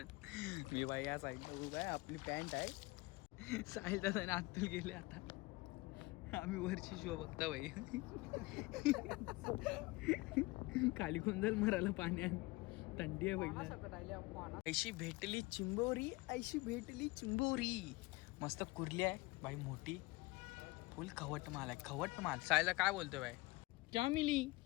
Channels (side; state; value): right; quieter; 22.5 dB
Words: मी बाई या साईडला उभा आहे, आपली पॅन्ट आहे. साहिल दादा आतून गेले आता. आम्ही वरची शो बघता बाई. खाली कोण जाईल मराला पाण्यात, थंडी आहे पहिला. ऐशी भेटली चिंबोरी, ऐशी भेटली चिंबोरी. मस्त कुर्ली आहे भाई, मोठी फुल खवट माल आहे, खवट माल. सायला काय बोलतोय भाई? क्या मिली?